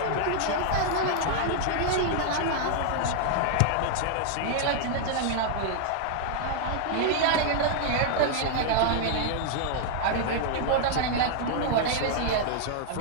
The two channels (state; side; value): different; both; correlation -0.01